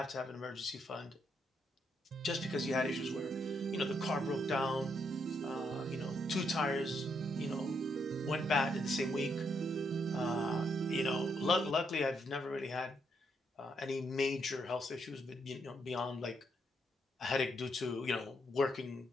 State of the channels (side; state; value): both; normal; correlation 0.77